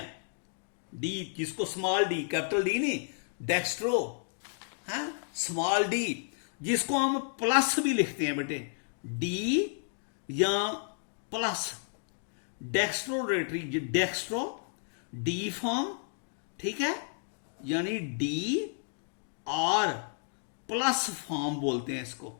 डी जिसको स्मॉल डी, कैपिटल डी नहीं, डेक्स्ट्रो है, स्मॉल डी, जिसको हम प्लस भी लिखते हैं बेटे, डी या plus, dextro rotatory, dextro D form, ठीक है, यानी डी आर प्लस फॉर्म बोलते हैं इसको,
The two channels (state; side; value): silent; right; digital silence